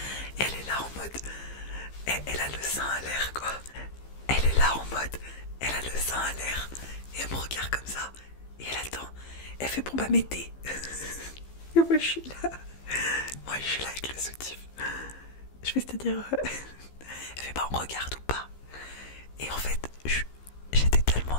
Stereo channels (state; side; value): late; right; 15 ms